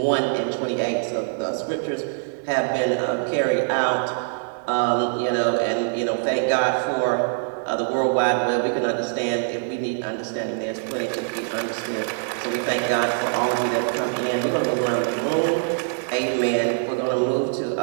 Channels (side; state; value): left; silent; digital silence